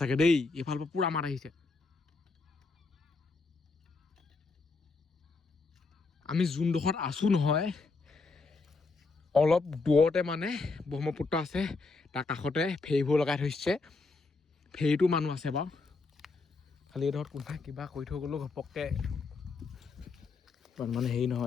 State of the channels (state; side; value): quieter; right; 4.0 dB